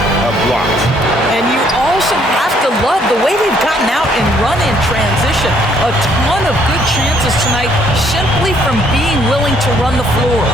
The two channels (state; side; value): normal; both; correlation 0.66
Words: blocks. And you also have to love the way they've gotten out and run in transition. A ton of good chances tonight simply from being willing to run the floor.